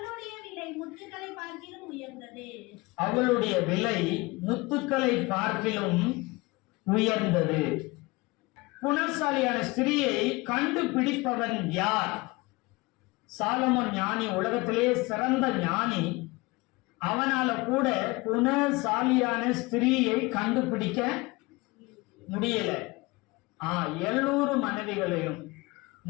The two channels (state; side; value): quieter; right; 23.7 dB